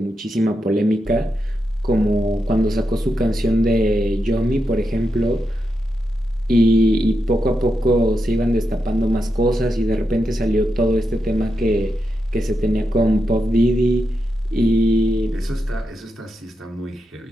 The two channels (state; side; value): normal; both; correlation 0.86